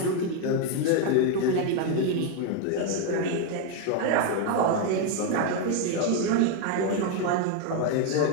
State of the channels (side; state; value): both; different; correlation 0.01